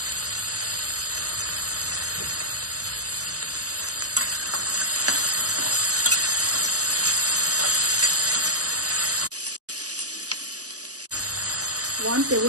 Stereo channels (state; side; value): late; left; 0.67 ms